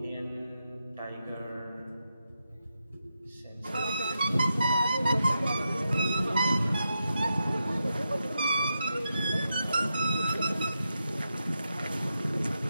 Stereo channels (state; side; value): inverted; both; correlation -0.87